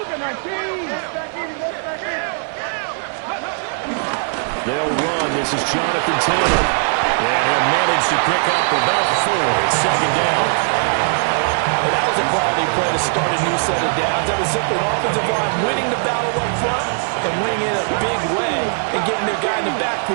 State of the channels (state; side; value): silent; left; 66 dB below the other